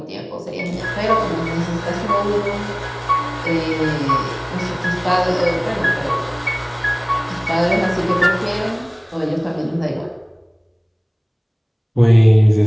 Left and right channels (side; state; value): both; identical; correlation 1.00